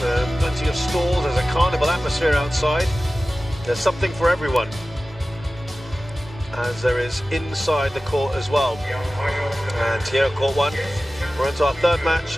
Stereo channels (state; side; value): normal; both; correlation 0.96